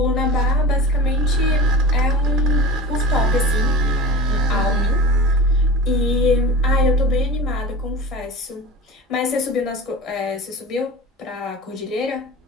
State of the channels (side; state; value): both; normal; correlation 0.33